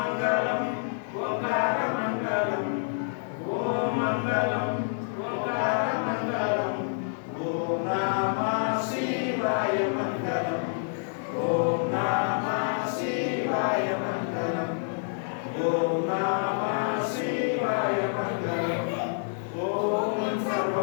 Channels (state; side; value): silent; right; 57 dB below the other